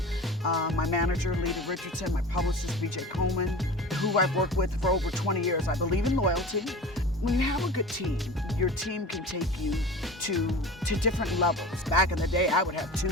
My manager, Lita Richardson, my publicist, BJ Coleman, who I've worked with for over 20 years. I believe in loyalty. When you have a good team, your team can take you to different levels. Back in the day, I would have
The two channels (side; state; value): both; normal; correlation 0.36